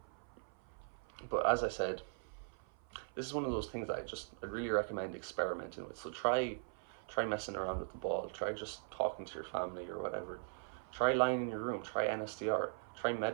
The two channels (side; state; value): left; silent; 51 dB below the other